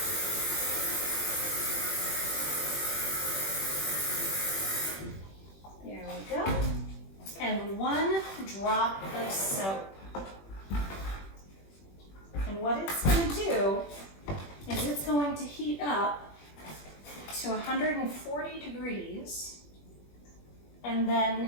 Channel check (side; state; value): right; late; 21 ms